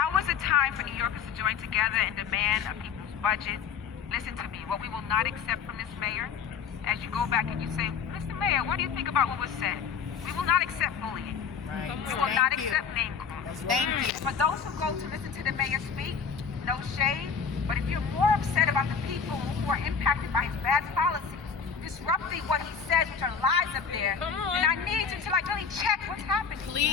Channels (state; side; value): quieter; right; 6.5 dB